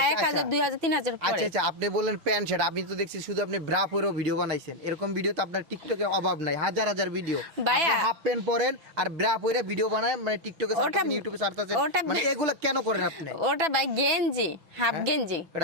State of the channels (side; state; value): left; late; 6.1 ms